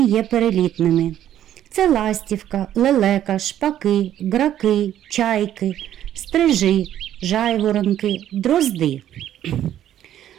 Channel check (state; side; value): quieter; left; 11.4 dB